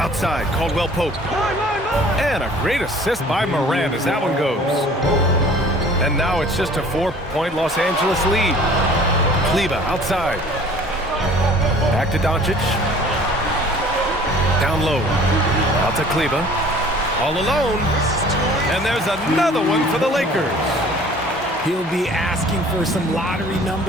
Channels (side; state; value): both; normal; correlation 0.50